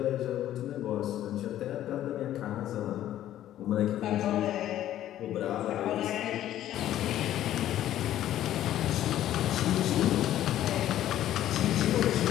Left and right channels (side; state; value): right; quieter; 12.5 dB